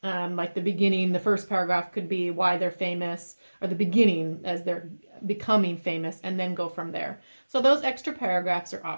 Like the beginning, the first paragraph could be why they're famous, or the beginning as they're becoming famous, and then go from there. So those extra paragraphs are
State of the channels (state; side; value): inverted; both; correlation -1.00